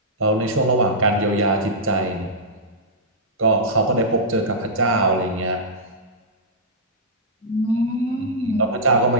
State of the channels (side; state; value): both; normal; correlation -0.12